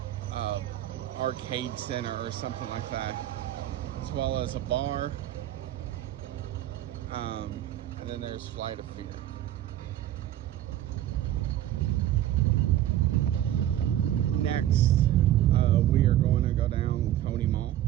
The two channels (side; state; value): left; quieter; 12.7 dB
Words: arcade center or something like that, as well as a bar. And then there's Flight of Fear. Next, we are going to go down Coney Mall.